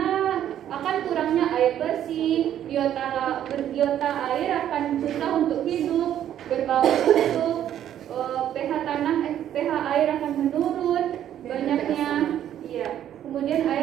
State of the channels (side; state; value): left; quieter; 10.8 dB